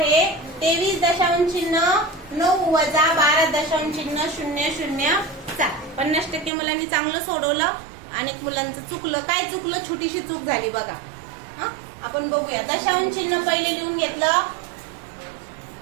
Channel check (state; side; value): drops out; left; at 6.5 s